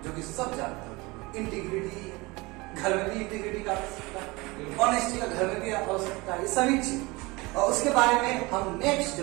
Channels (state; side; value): quieter; left; 23.8 dB